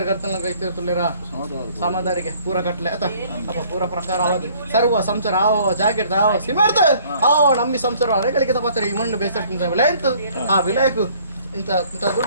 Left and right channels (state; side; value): inverted; both; correlation -0.58